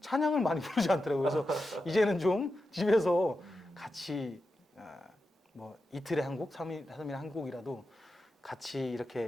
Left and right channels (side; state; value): both; normal; correlation 0.90